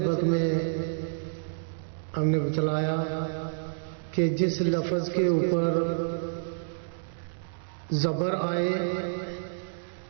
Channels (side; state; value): left; silent; digital silence